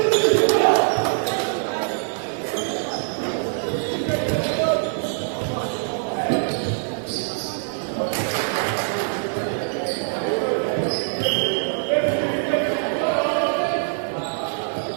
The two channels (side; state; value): left; silent; 63 dB below the other